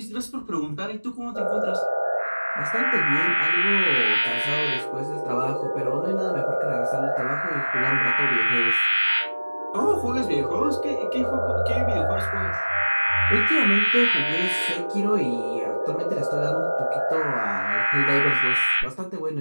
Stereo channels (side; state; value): both; inverted; correlation -1.00